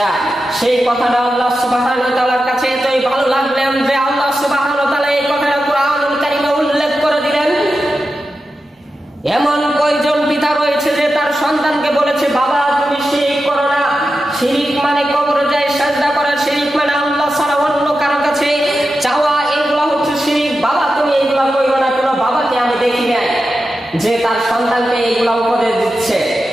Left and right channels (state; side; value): normal; both; correlation 0.91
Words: সেই কথাটা আল্লাহ সুবহানাহু ওয়া তাআলার কাছে এতই ভালো লাগলেন যে আল্লাহ সুবহানাহু ওয়া তাআলা এই কথাটা কোরআনুল কারীমে উল্লেখ করে দিলেন। এমন কয়জন পিতা রয়েছে যে তার সন্তানকে বলেছে, বাবা তুমি শিরক করো না। শিরক মানে কবরে যায় সিজদা করা, শিরক মানে আল্লাহ ছাড়া অন্য কারো কাছে চাওয়া, এগুলো হচ্ছে শিরক। বাবা তুমি এগুলো করো না। কোনো বাবাকে আমি দেখি নাই যে তার সন্তানকে এগুলো উপদেশ দিচ্ছে।